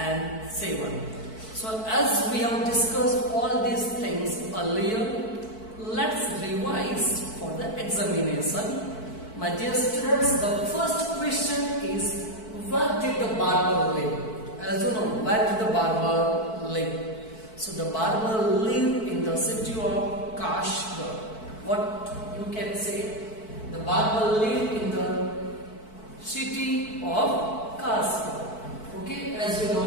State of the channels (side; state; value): right; late; 4.6 ms